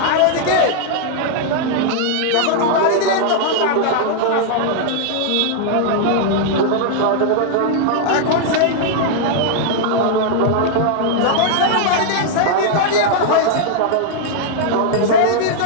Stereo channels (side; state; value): both; different; correlation -0.01